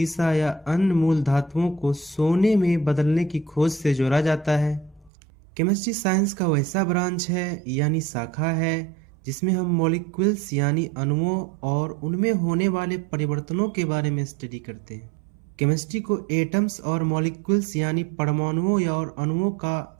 या अन्य मूल धातुओं को सोने में बदलने की खोज से जोड़ा जाता है। केमिस्ट्री साइंस का वैसा ब्रांच है यानी शाखा है जिसमें हम मॉलिक्यूल्स यानी अणुओं और उनमें होने वाले परिवर्तनों के बारे में स्टडी करते हैं। केमिस्ट्री को एटम्स और मॉलिक्यूल्स यानी परमाणुओं या और अणुओं का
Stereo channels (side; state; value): left; drops out; at 5.1 s